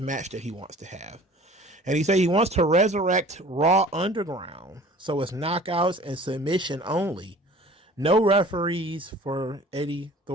match that he wants to have. And he said he wants to resurrect Raw Underground. So it's knockouts and submission only. No referees for Eddie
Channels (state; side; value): normal; both; correlation 0.47